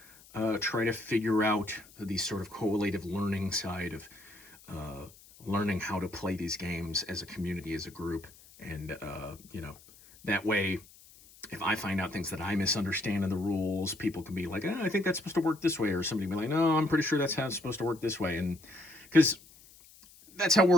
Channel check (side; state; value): left; noise; hiss, 23 dB below the sound